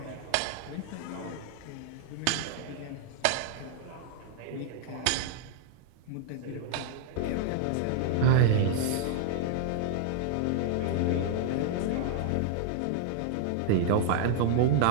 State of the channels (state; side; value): different; both; correlation 0.00